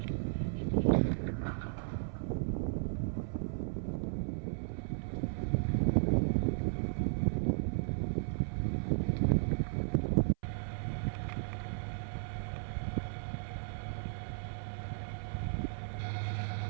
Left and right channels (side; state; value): left; silent; 54 dB below the other